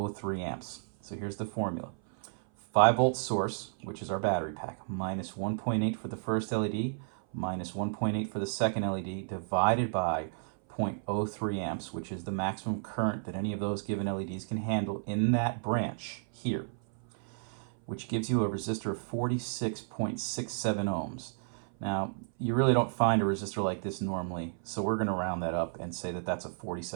amps. So here's the formula. 5 volt source, which is our battery pack, minus 1.8 for the first LED, minus 1.8 for the second LED, divided by 0.03 amps, which is the maximum current that any of those given LEDs can handle in that branch here, which gives you a resistor of 46.67 ohms. Now, you really don't find a resistor like this normally, so we're going to round that up and say that that's a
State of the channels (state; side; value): silent; left; 56 dB below the other